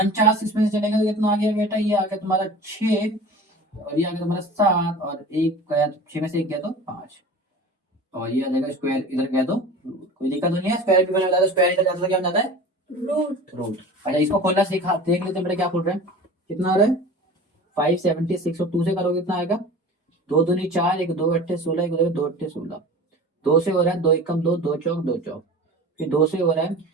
इसमें से चलेगा तो कितना आ गया बेटा? ये आ गया तुम्हारा 6, और ये आ गया तुम्हारा 7, और एक गया 6 में से एक गया तो 5, और ये आ जाएगा स्क्वायर, इधर गया तो कोई दिक्कत तो नहीं है। स्क्वायर भी बना जाता है, स्क्वायर इधर जाता है तो क्या बन जाता है? रूट। अच्छा इसको खोलना सीखा, देख लेते हैं बेटा क्या खोल रहे हैं। कितना आ रहा है? 576, और 2 से करोगे कितना आएगा? 2 दूनी 4, एक 2 अट्ठे 16, एक 2 अट्ठे 16। 2 से हो रहा है 2 एकम 2, 2 चौक 2 चौक, फिर 2 से हो रहा है,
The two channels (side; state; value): both; normal; correlation 0.38